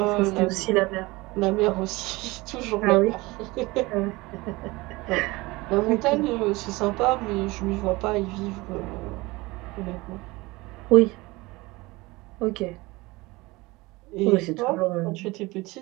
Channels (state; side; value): quieter; left; 22.1 dB